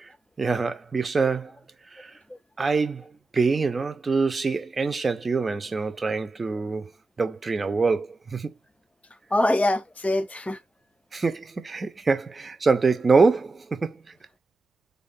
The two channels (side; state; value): left; quieter; 3.1 dB